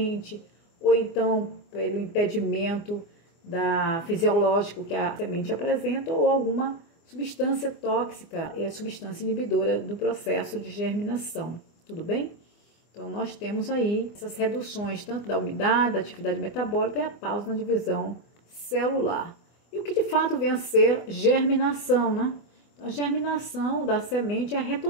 ou então pelo impedimento fisiológico que a semente apresenta ou alguma substância tóxica e a substância inibidora do processo de germinação, tudo bem? Então, nós temos aí essas reduções tanto da umidade, da atividade metabólica e a pausa na divisão celular. E o que de fato vem a ser germinação, né? A germinação da semente é a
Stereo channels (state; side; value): late; right; 24 ms